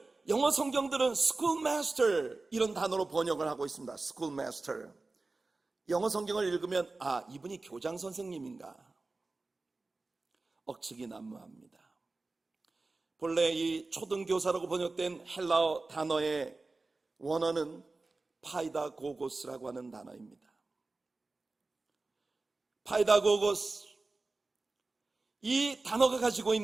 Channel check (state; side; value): quieter; left; 3.5 dB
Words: 영어 성경들은 schoolmaster 이런 단어로 번역을 하고 있습니다. schoolmaster. 영어 성경을 읽으면 이분이 교장 선생님인가? 억측이 난무합니다. 본래 이 초등교사라고 번역된 헬라어 단어의 원어는 파이다고고스라고 하는 단어입니다. 파이다고고스, 이 단어가 가지고